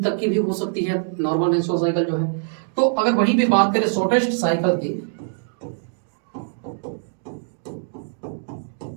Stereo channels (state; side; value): silent; left; digital silence